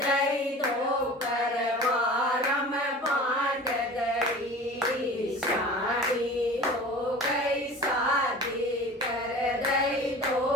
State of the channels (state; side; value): normal; both; correlation 0.39